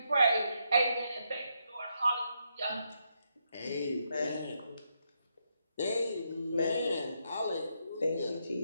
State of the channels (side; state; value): both; inverted; correlation -0.80